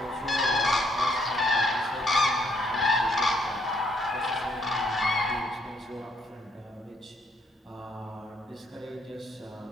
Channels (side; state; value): both; normal; correlation 0.70